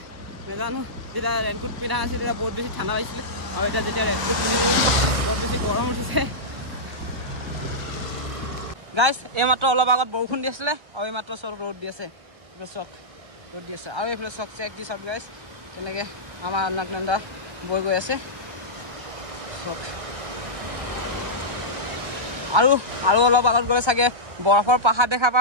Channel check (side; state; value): left; late; 1.3 ms